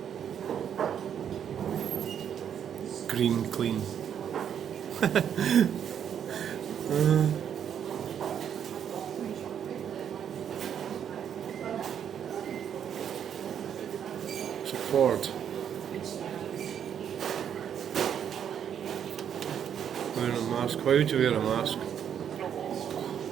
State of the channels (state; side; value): quieter; left; 8.7 dB